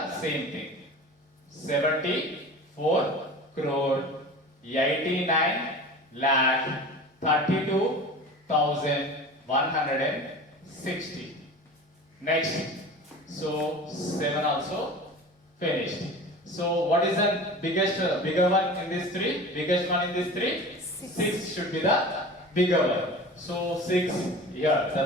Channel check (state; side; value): normal; both; correlation 0.36